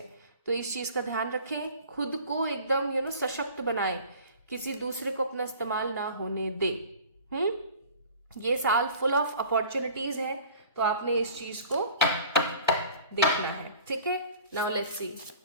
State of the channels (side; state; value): both; inverted; correlation -0.45